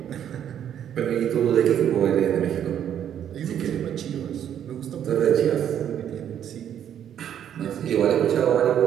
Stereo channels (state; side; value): quieter; left; 9.7 dB